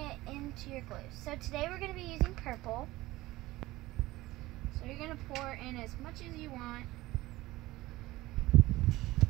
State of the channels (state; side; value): quieter; left; 18.3 dB